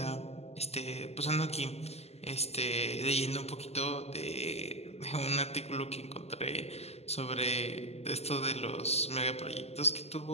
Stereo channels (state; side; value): late; right; 0.30 ms